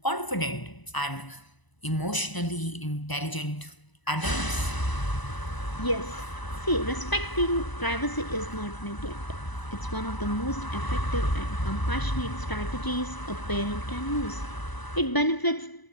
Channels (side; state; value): right; late; 1.0 ms